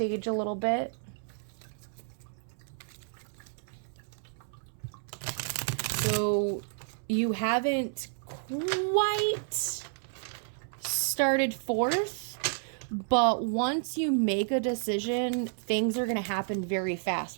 a little bit. So you haven't quite started forth, but once you make a decision, things are going to happen very fast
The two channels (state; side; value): silent; left; 57 dB below the other